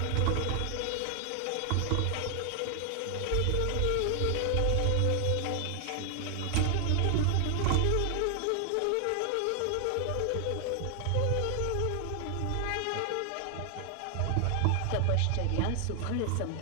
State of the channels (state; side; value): different; both; correlation 0.00